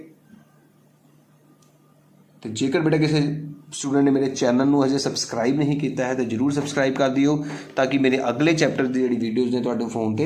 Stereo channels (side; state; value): both; identical; correlation 1.00